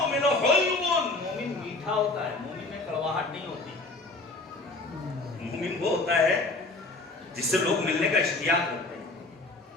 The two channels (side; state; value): right; quieter; 3.2 dB